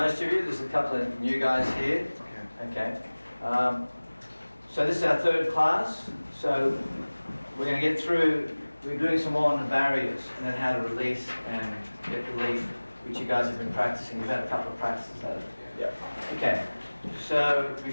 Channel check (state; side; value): inverted; both; correlation -1.00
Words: of you. There's a couple of new guys here. Okay. So this is our third class. So we're going to get through, we're doing some more on the barriers and then how to release and get relief, which you guys have been practicing. You've had a couple of practices at it. Yeah. Okay. So